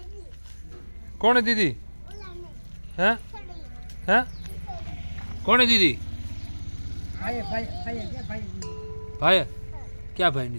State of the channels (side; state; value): both; inverted; correlation -1.00